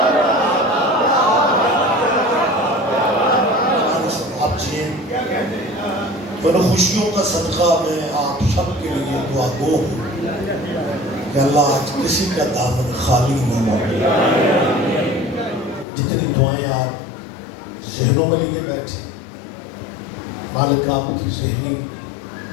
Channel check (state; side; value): drops out; right; at 15.9 s